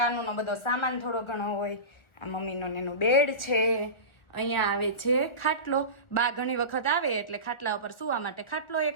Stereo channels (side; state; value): right; late; 1.4 ms